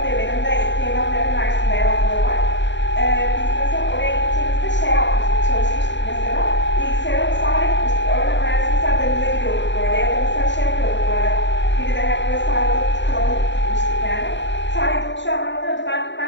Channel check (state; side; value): late; right; 0.53 ms